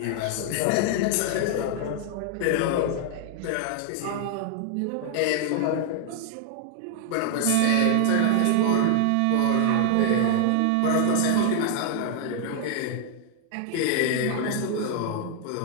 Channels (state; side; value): different; both; correlation 0.00